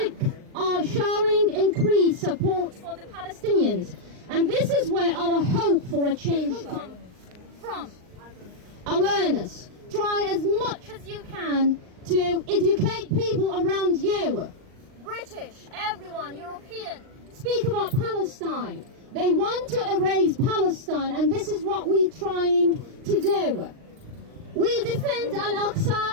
are showing increased support for the Palestinians, and this is where our hope for a change comes from. Awareness. Try as much as you can to educate people around you. British, everyone, European, speak about Palestine. They want to erase Palestine, and this is what we're trying to do. We defend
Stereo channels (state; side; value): late; left; 39 ms